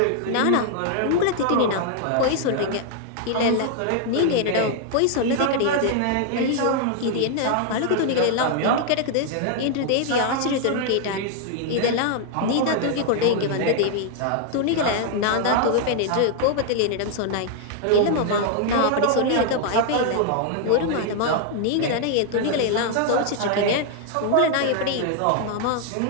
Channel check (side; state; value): both; different; correlation 0.00